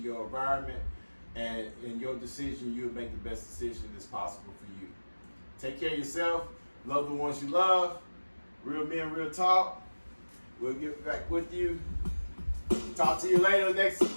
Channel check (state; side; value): inverted; both; correlation -1.00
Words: environment, and in your decision, you'll make the best decision that's possible for you. Take care of yourself, love the ones you love. Real men, real talk. We'll get back with you. Talk to you later